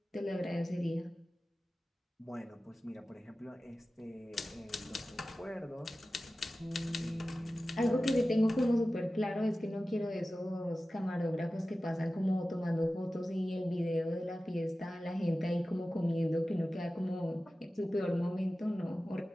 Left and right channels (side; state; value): both; normal; correlation 0.95